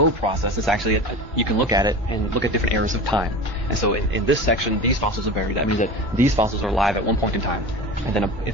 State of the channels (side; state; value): both; normal; correlation 0.31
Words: process, it's actually, you can look at it and look at different eras of time. And so in this section, these fossils are buried. That means that these fossils are alive at one point in time. And then